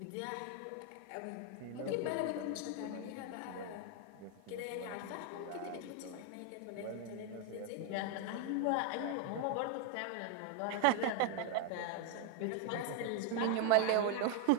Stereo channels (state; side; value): different; both; correlation 0.01